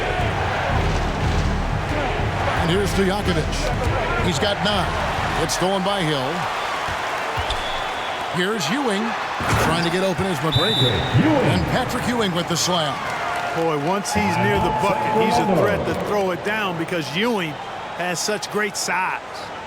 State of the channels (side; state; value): both; identical; correlation 1.00